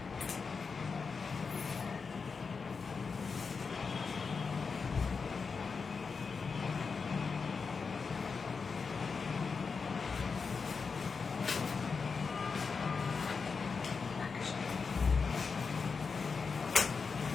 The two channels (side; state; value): right; quieter; 5.1 dB